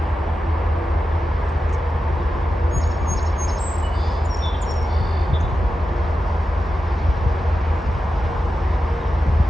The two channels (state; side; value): normal; both; correlation 0.91